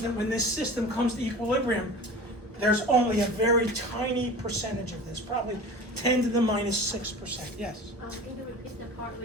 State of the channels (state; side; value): normal; both; correlation 0.37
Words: that when this system comes to equilibrium, there's only a very tiny percentage of this, probably 10 to the minus 6%. Yes? Can you repeat the part